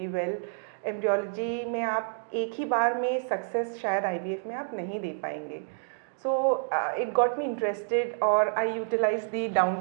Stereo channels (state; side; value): silent; left; digital silence